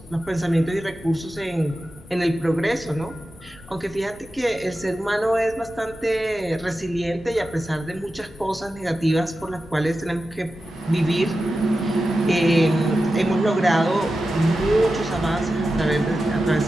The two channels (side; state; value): both; normal; correlation 0.92